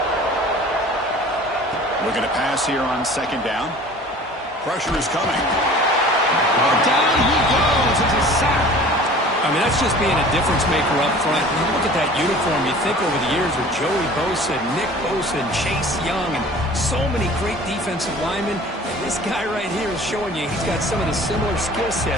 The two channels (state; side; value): normal; both; correlation 0.45